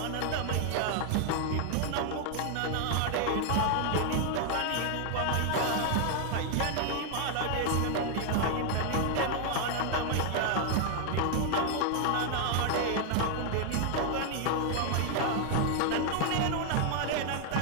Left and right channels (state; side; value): different; both; correlation 0.00